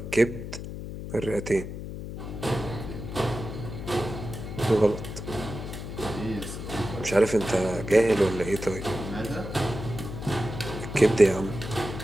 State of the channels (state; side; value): noise; left; hum, 8 dB below the sound